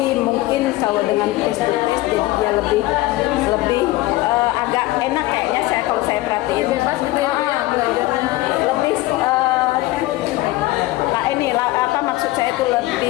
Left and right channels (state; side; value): quieter; right; 18.1 dB